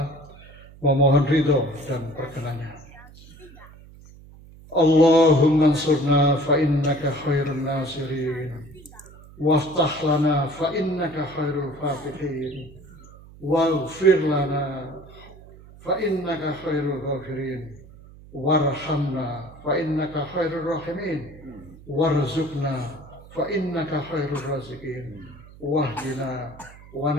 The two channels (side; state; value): right; noise; hum, 21 dB below the sound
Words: memohon ridho dan perkenannya. Allahumma ansurna fa innaka khairun nasirin, waftah lana fa innaka khairul fatihin, waghfir lana fa innaka khairul ghafirin, warhamna fa innaka khairur rahimin, warzuqna fa innaka khairur raziqin, wahdina wa